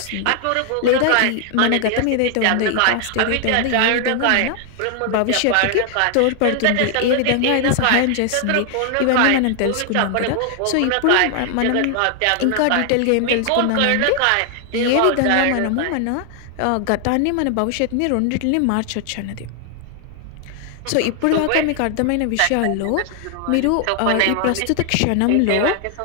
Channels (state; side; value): different; both; correlation 0.00